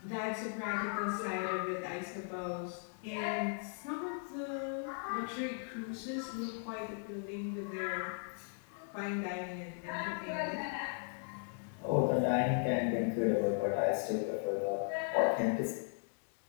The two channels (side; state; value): right; silent; 53 dB below the other